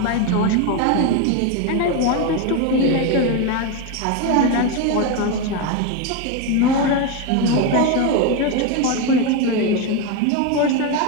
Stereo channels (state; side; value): different; both; correlation 0.03